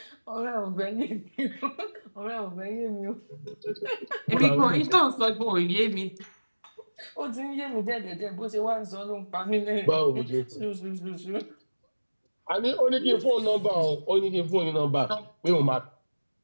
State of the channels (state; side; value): inverted; both; correlation -1.00